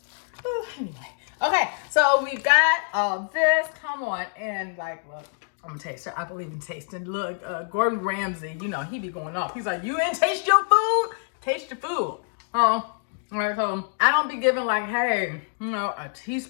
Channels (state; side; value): silent; right; 61 dB below the other